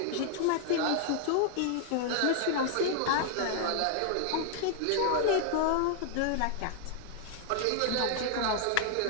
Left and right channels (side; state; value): both; different; correlation 0.00